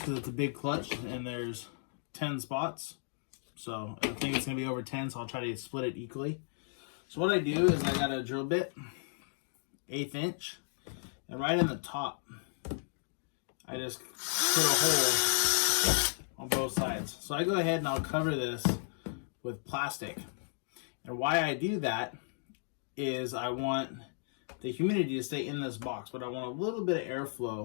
it's a big clutch and there's 10 spots. So I think it's going to be over 10, so I'll try to split it equally. So what I do is I got a drill bit, 1/8 inch, and right in the top, I just put a hole on both sides. So I go ahead and I'll cover this with plastic. And why I do that is I want the humidity to stay in this box, but I want a little bit of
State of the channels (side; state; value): right; silent; digital silence